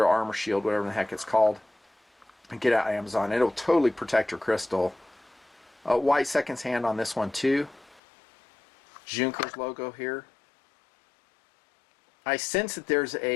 armor shield, whatever the heck it's called. And get it out of Amazon. It'll totally protect your crystal. White seconds hand on this one too. Junkers logo here. I sense that there's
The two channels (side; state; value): right; drops out; at 8.0 s